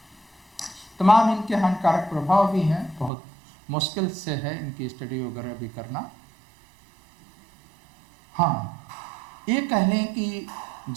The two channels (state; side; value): drops out; left; at 3.1 s